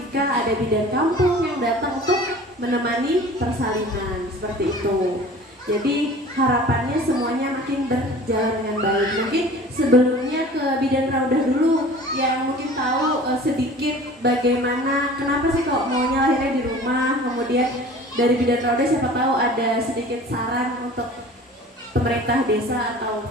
ada bidan kampung yang datang untuk menemani persalinan seperti itu. Jadi harapannya semuanya makin berjalan dengan baik. Mungkin sebelumnya ke Bidan Raudah dulu yang mungkin tahu sedikit bagaimana, kenapa sih kok maunya lahirnya di rumah. Kemudian dari Bidan Raudah siapa tahu ada sedikit saran untuk pemerintah desa atau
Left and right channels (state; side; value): normal; both; correlation 0.43